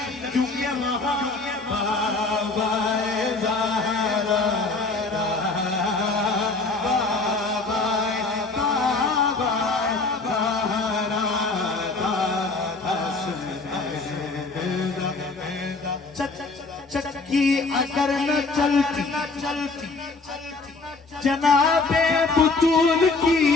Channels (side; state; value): right; quieter; 3.7 dB